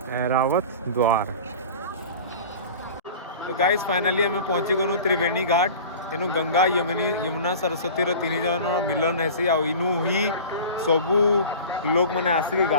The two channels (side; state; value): both; inverted; correlation -0.38